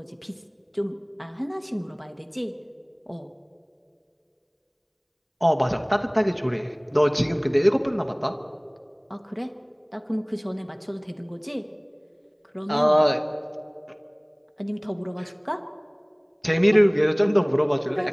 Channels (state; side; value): identical; both; correlation 1.00